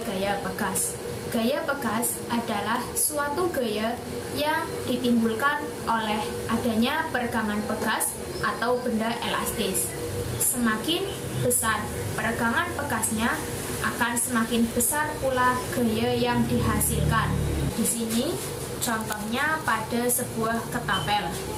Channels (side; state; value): both; identical; correlation 1.00